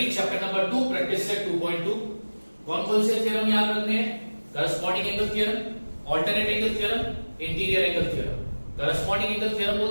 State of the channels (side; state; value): both; inverted; correlation -1.00